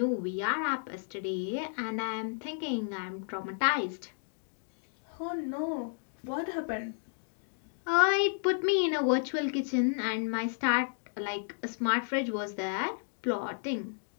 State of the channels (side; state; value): right; silent; 56 dB below the other